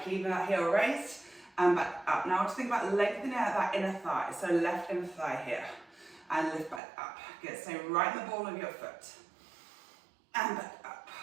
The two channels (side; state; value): left; drops out; at 6.8 s